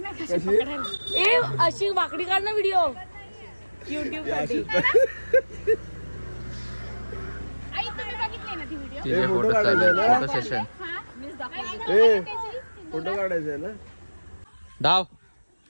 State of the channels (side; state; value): both; inverted; correlation -1.00